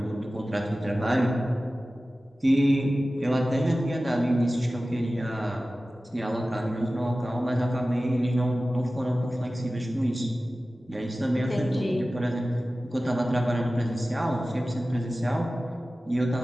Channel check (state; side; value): normal; both; correlation 0.96